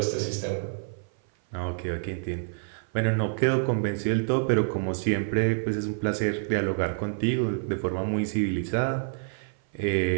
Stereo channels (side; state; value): left; silent; 56 dB below the other